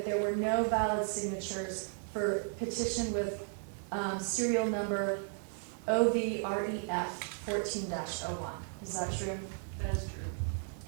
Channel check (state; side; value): silent; left; 55 dB below the other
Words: there were no valid signatures for petition with serial number OVREF 14-01. Is that true? That is true.